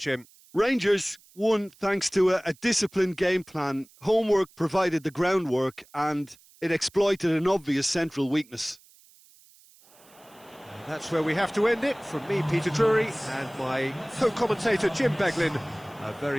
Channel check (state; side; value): noise; right; hiss, 27 dB below the sound